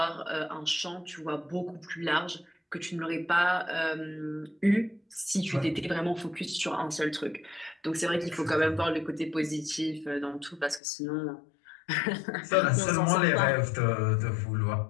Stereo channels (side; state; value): right; drops out; at 10.8 s